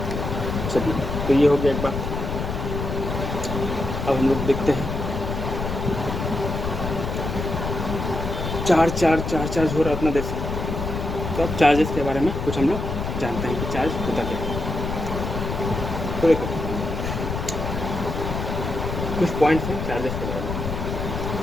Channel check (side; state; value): left; noise; rumble, 4 dB below the sound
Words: तो ये हो गया एक बात। अब हम लोग देखते हैं चार्ज हो रहा है उतना देर से। तो अब चार्जेस के बारे में कुछ हम लोग जानते हैं कि चार्ज होता क्या है। तो देखो कुछ पॉइंट्स हैं चार्जेस के बारे में,